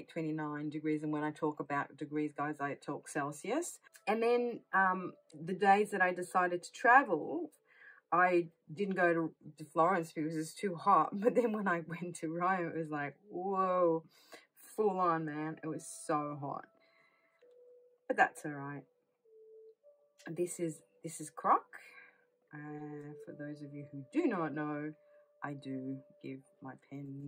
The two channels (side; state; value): both; identical; correlation 1.00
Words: 29 degrees. And when I talk about degrees, guys, I talk Celsius. And then the days that I decided to travel, I didn't go to Florence because it was too hot. But then when I went to Rome, it was like, whoa, full on, man. It was so hot. But that's all right. This is Croc. For those of you who do not know, I do give my